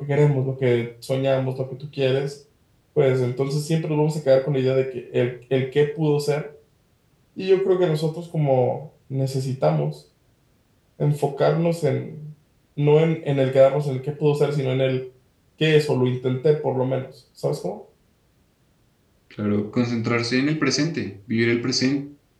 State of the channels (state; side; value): identical; both; correlation 1.00